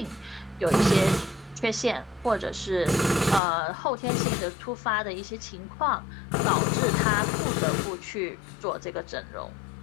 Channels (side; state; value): right; drops out; at 3.4 s